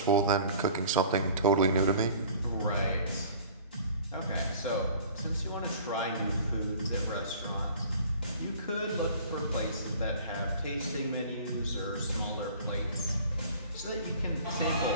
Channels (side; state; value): both; inverted; correlation -0.47